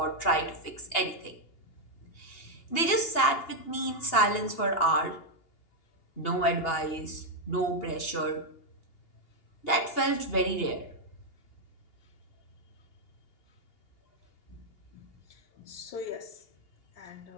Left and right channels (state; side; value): late; right; 2.8 ms